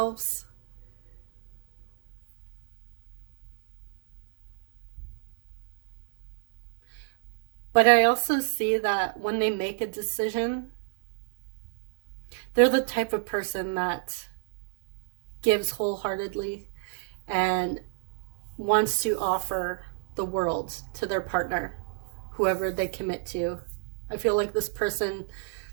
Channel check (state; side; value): silent; left; digital silence